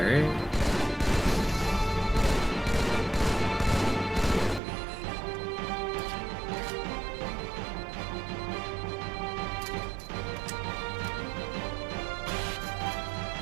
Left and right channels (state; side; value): drops out; left; at 4.6 s